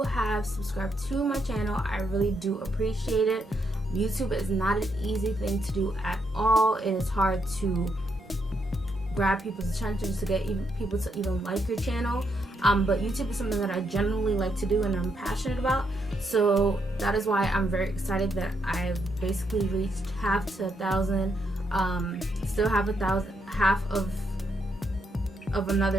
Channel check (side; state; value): both; normal; correlation 0.78